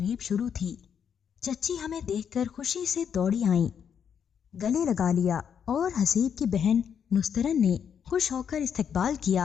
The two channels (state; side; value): quieter; right; 7.8 dB